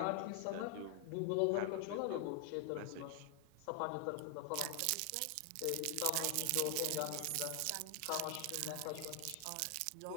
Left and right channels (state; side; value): different; both; correlation 0.00